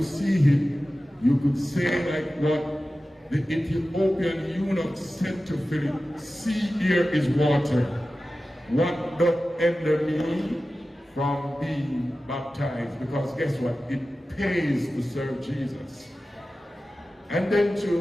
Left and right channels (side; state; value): both; normal; correlation 0.95